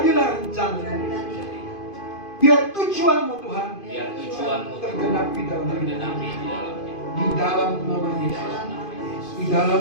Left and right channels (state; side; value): late; right; 2.5 ms